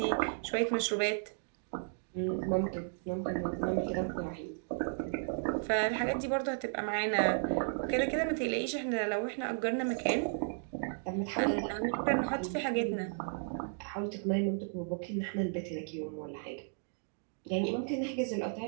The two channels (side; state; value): left; silent; digital silence